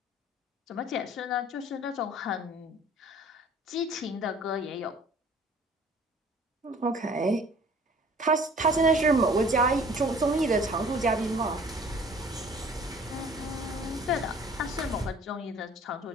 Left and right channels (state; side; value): normal; both; correlation 0.52